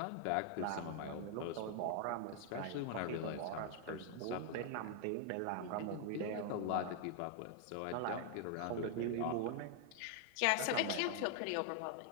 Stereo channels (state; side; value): different; both; correlation 0.00